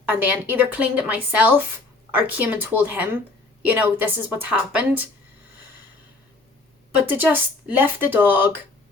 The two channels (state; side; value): quieter; right; 3.4 dB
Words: and then either cleaned it myself or came and told him, this is what's happened. But to just lift the dog,